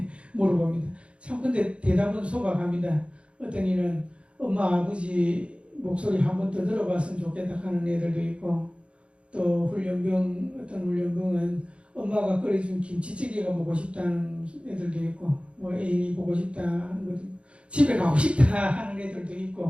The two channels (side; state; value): left; late; 0.059 ms